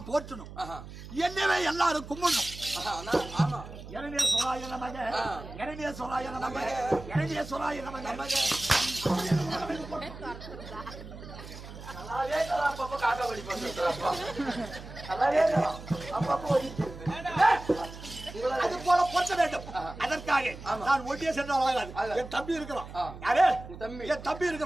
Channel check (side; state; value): right; noise; hum, 14 dB below the sound